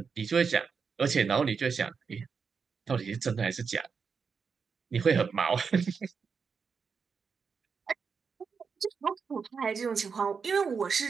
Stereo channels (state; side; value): quieter; left; 5.7 dB